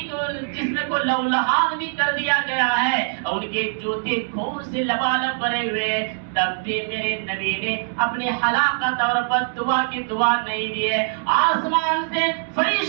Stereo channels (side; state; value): left; silent; 64 dB below the other